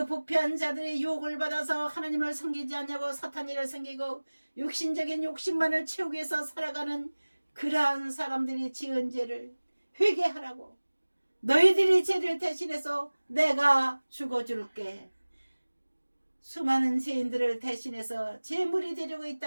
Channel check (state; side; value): inverted; both; correlation -1.00